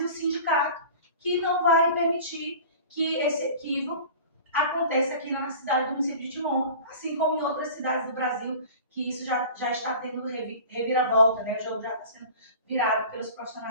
o sindicato, que não vai permitir que esse equívoco aconteça aqui na cidade do município de Timon, assim como em outras cidades do Brasil, que isso já está tendo reviravolta, né? O jogo já está sendo virado pelos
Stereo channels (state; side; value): inverted; both; correlation -0.40